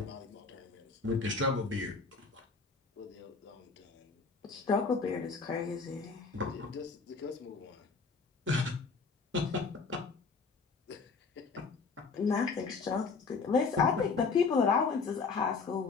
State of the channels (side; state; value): right; quieter; 4.7 dB